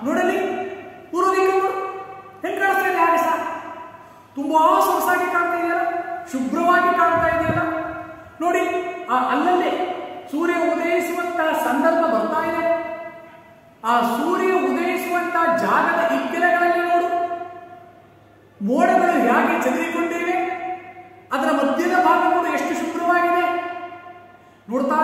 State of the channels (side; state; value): both; identical; correlation 1.00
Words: ನೋಡಲಿ, ಪೂರ್ವದಿಕ್ಕು ಹೆಂಗ್ ಕಾಣಿಸ್ತಾ ಇದೆ ಆಕಾಶ, ತುಂಬಾ ಸೊಗಸಾಗಿ ಕಾಣ್ತಾ ಇದೆಯಲ್ಲ, ಶುಭ್ರವಾಗಿ ಕಾಣ್ತಾ ಇದೆಯಲ್ಲ. ನೋಡಿ, ಅಲ್ಲಲ್ಲೇ ಸೂರ್ಯ ಉದಯಿಸುವಂತಹ ಸಂದರ್ಭ ಬರ್ತಾ ಇದೆ. ಆ ಸೂರ್ಯ ಉದಯಿಸುವಂತಹ ಜಾಗದ ಇಕ್ಕೆಲೆಗಳಲ್ಲಿ ನೋಡು, ಮೋಡಗಳು ಹೇಗೆ ಚದುರಿಕೊಂಡಿವೆ, ಅದರ ಮಧ್ಯದ ಭಾಗ ನೋಡು ಎಷ್ಟು ಶುಭ್ರವಾಗಿದೆ. ನೋಡ್ತಾ